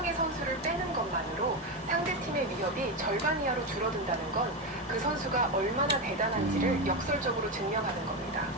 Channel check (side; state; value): both; normal; correlation 0.13